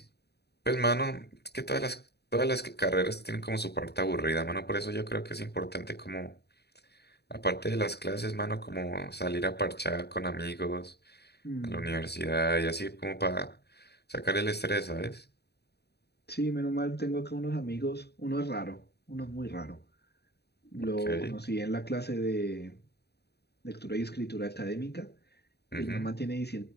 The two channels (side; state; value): right; late; 0.48 ms